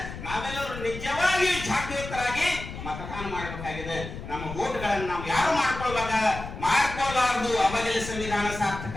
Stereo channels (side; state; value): left; noise; rumble, 10 dB below the sound